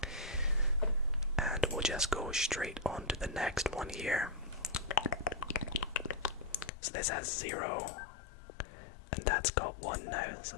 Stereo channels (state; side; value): drops out; right; at 6.7 s